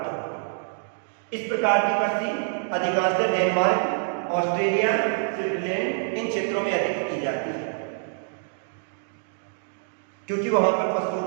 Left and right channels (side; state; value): left; silent; digital silence